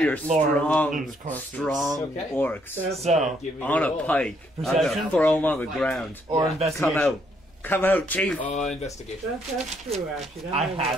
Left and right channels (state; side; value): normal; both; correlation 0.71